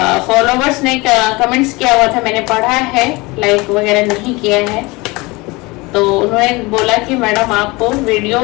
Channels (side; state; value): right; quieter; 23.9 dB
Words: फॉलोवर्स ने कमेंट्स किया हुआ था, मैंने पढ़ा है, लाइक वगैरह नहीं किया है, तो उन्होंने बोला कि मैडम आप वीडियो